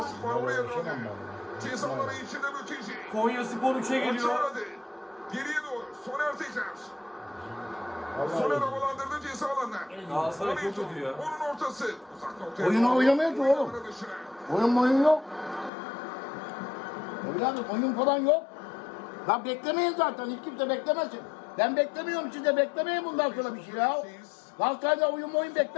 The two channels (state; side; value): drops out; right; at 15.7 s